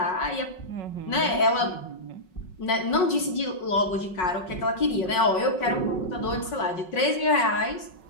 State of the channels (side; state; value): right; late; 5.4 ms